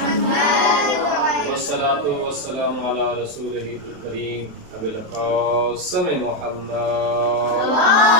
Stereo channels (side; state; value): left; late; 27 ms